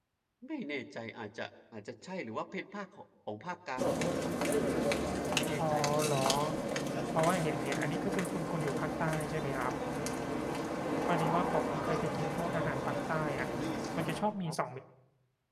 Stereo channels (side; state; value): both; identical; correlation 1.00